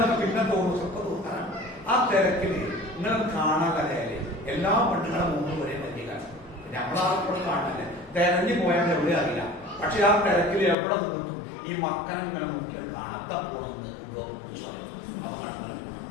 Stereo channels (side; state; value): right; drops out; at 10.8 s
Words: പിന്നെ തോന്നുന്നു, സ്വപ്പം തോന്നാനാണ്. ആ തിരക്കില് ഇങ്ങനെ കാണാൻ കലയാലേ എല്ലാ പെണ്ണുങ്ങളുടെ മുമ്പ് ഒരേ പറ്റിയാണ്. നമ്മളാർക്കും കാണാനല്ലേ, തെരഞ്ഞു പോയാൽ എവിടെ അറിയില്ല. പക്ഷെ ആ തിരക്കിൽ എവിടെ നിന്നും ഈ മക്കനെ ഇങ്ങനെ നോക്കിയാൽ കാണാത്ത പോണെന്ന് അപകടങ്ങളെ പോകണം